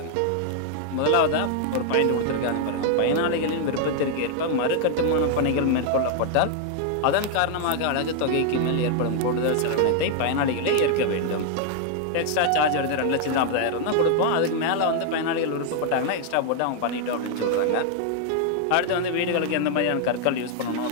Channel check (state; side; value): different; both; correlation 0.00